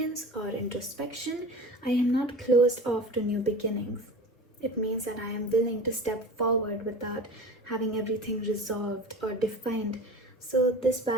or introspection, I am not closed off to new beginnings. It means that I am willing to step forward without having everything resolved or defined. So, this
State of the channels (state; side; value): normal; both; correlation 0.36